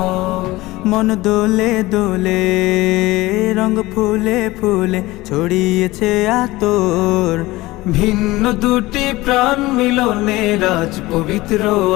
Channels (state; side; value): quieter; right; 19.3 dB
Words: মন দোলে দোলে, রঙ ফুলে ফুলে ছড়িয়েছে আতর। ভিন্ন দুটি প্রাণ মিলনে রাজ পবিত্র